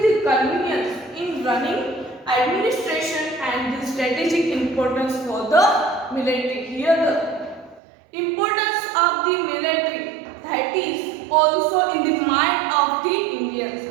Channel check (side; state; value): left; drops out; at 7.8 s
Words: the convenience in running administration and the strategic importance for the military. Here the importance of the military that is also in the mind of the